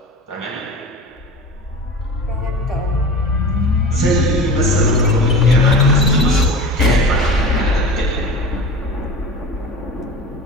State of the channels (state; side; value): normal; both; correlation 0.33